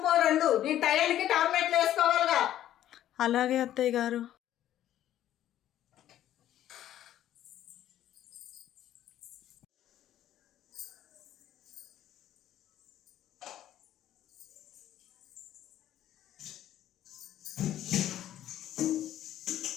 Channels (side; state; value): right; quieter; 12.2 dB